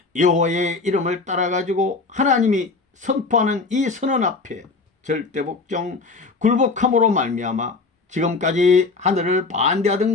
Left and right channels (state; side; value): quieter; right; 3.9 dB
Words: 여호와의 이름을 따라가지고 하나님이 선포하는 이 선언 앞에 절대 복종 굴복함으로 말미암아 지금까지 하늘을 반대하던